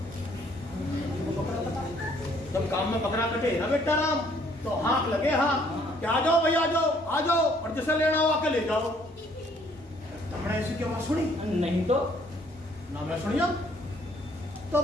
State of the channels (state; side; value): normal; both; correlation 0.63